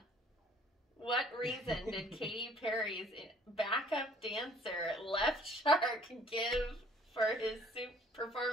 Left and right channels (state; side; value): normal; both; correlation 0.57